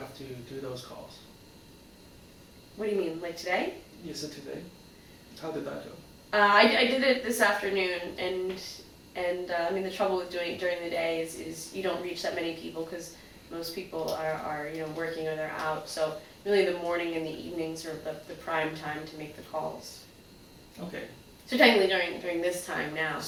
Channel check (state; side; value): identical; both; correlation 1.00